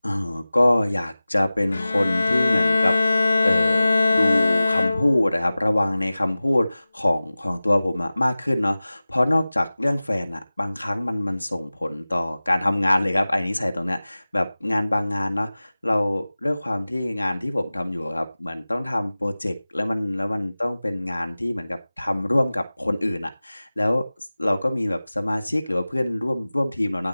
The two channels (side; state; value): both; inverted; correlation -0.97